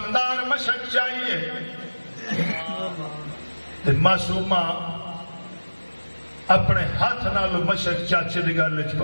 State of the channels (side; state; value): both; inverted; correlation -1.00